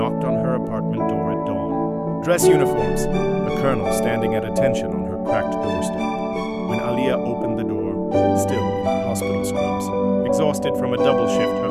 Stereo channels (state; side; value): identical; both; correlation 1.00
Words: on her apartment door at dawn. Dress uniforms, a colonel standing at attention on her cracked doorstep. When Aaliyah opened the door, still in her hospital scrubs, exhausted from a double shift, her